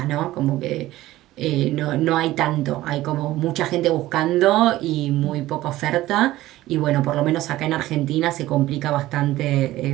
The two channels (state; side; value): quieter; left; 16.2 dB